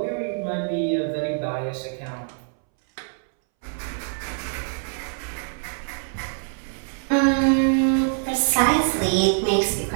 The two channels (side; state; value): left; silent; 62 dB below the other